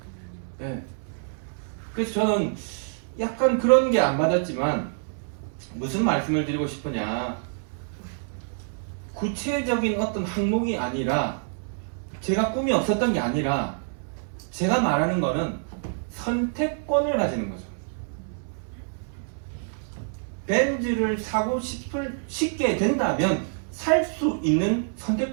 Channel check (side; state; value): left; silent; 60 dB below the other